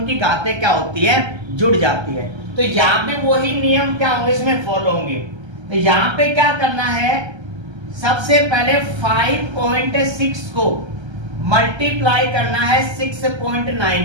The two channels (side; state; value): left; late; 1.3 ms